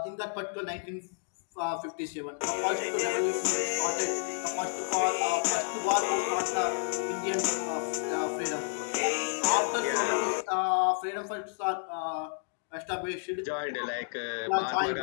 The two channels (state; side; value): silent; right; digital silence